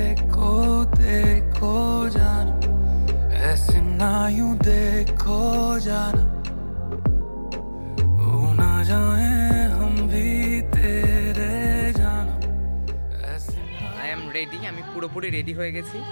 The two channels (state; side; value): inverted; both; correlation -1.00